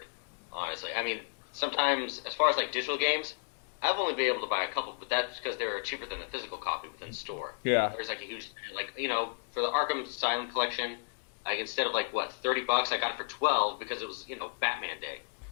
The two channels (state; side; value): silent; right; digital silence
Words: honestly. I mean, sometimes, as far as digital games, I've only been able to buy a couple, but that's because they're cheaper than the physical copy within the store. Yeah. There's a huge, for the Arkham Asylum collection, instead of $30, I got it for $12 because it was, Batman Day.